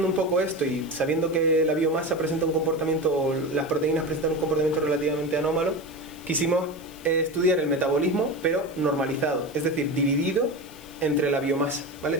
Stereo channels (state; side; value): noise; left; hiss, 22 dB below the sound